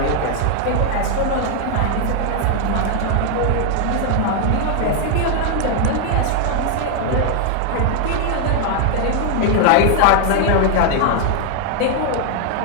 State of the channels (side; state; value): both; different; correlation 0.00